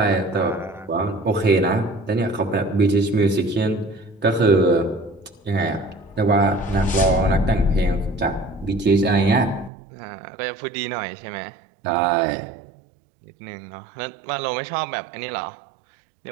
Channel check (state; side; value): drops out; left; at 9.7 s